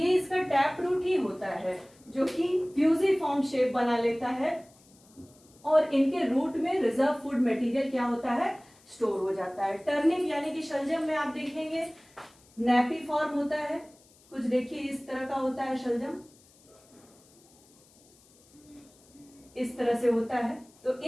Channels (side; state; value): left; noise; hiss, 29 dB below the sound